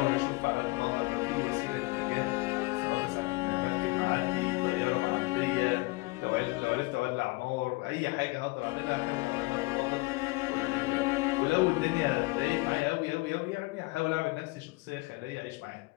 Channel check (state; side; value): quieter; right; 24.0 dB